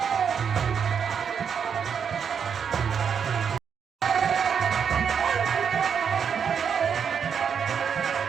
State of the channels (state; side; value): quieter; left; 7.1 dB